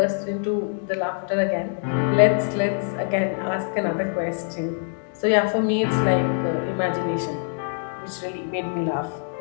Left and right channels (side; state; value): right; silent; digital silence